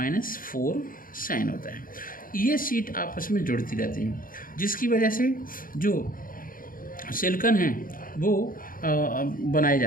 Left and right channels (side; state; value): right; late; 0.41 ms